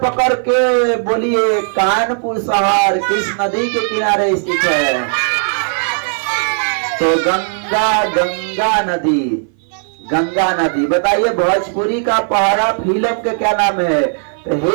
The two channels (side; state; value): left; silent; 58 dB below the other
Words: के बोलिए कानपुर शहर किस नदी के किनारे स्थित है? तो गंगा, गंगा नदी। गंगा नदी। बताइए भोजपुरी का पहाड़ा फिल्म के क्या नाम है? तो